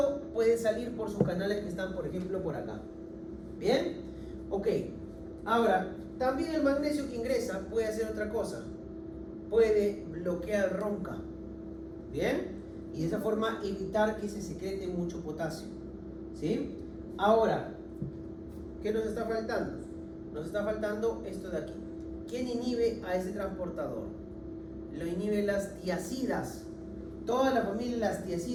puede salir por sus canales que están, por ejemplo, por acá. Bien, ok. Ahora, también el magnesio que ingresa puede hacer otra cosa. Puede bloquear RONCA. Bien, y de esa forma evitar que se secrete mucho potasio. ¿Sí? Ahora, ¿qué nos está faltando? Nos está faltando esto de aquí. ¿Quién inhibe a ese transportador? Lo inhiben las tiacidas. Toda la familia de las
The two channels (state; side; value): identical; both; correlation 1.00